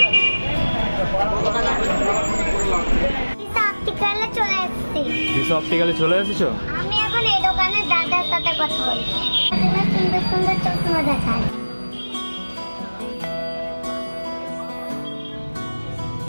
অপটিক্যালে চলে এসেছি। দিশা অপটিক্যালে চলে এসেছো? আমি এখন এই দোকানের দাদার সাথে কথা বলছি। সুন্দর সুন্দর চশমা দেখায়।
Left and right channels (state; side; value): inverted; both; correlation -1.00